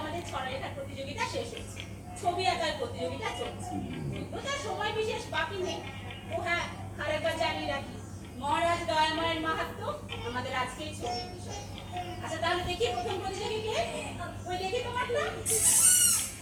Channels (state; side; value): identical; both; correlation 1.00